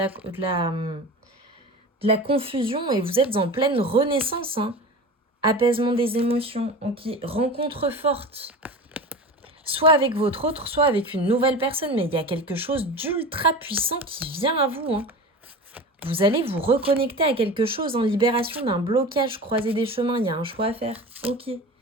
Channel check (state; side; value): normal; both; correlation 0.32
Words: la confusion et vous êtes en pleine renaissance. Hein. Apaisement des émotions, ok. Rencontre forte. Soit avec votre autre, soit avec une nouvelle personne. Mais il y a quelque chose d'ultra puissant qui vient à vous. Hein. Vous allez vous reconnecter à quelque chose en libération d'un blocage, croiser des chemins. Il y a un choix à faire. Ok.